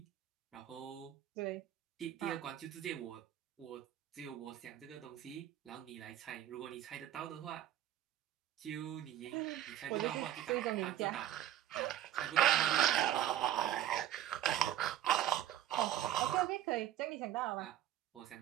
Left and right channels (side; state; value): left; quieter; 11.8 dB